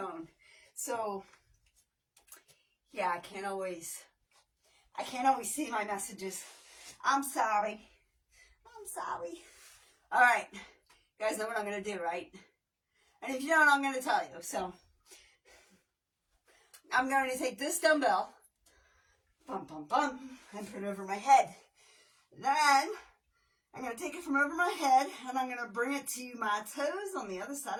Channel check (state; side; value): identical; both; correlation 1.00